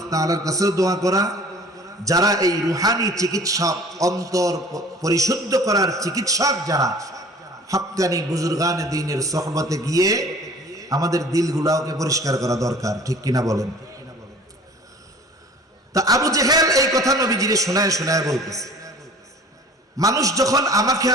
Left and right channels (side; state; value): both; normal; correlation 0.47